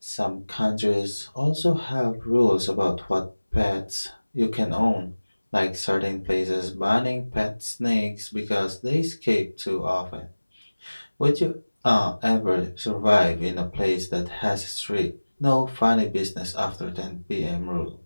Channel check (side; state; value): both; inverted; correlation -1.00